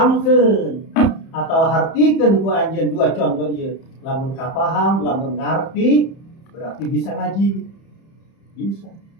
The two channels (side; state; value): right; late; 31 ms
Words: atau hartikeun ku anjeun dua contoh ieu. Lamun kapaham, lamun ngarti berarti bisa ngaji. Bisa.